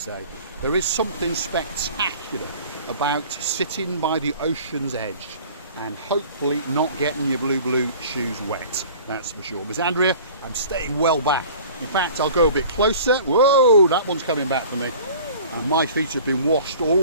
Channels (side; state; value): both; inverted; correlation -0.45